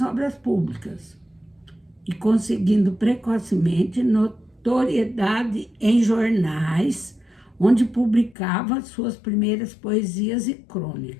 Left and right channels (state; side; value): drops out; right; at 8.3 s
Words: Obras Públicas, e conseguindo precocemente notoriedade em jornais, onde publicava suas primeiras poesias e